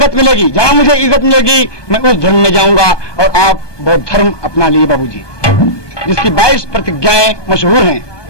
मिलेगी, जहां मुझे इज्जत मिलेगी, मैं उस धर्म में जाऊंगा। और आप बौद्ध धर्म अपना लिए बाबूजी, जिसकी 22 प्रतिज्ञाएं मशहूर हैं।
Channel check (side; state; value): right; late; 1.2 ms